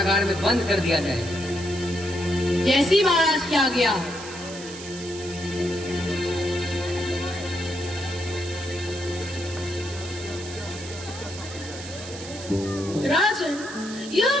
में बंद कर दिया जाए। जैसी महाराज की आज्ञा। राजन, यह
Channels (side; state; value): right; noise; hiss, 12 dB below the sound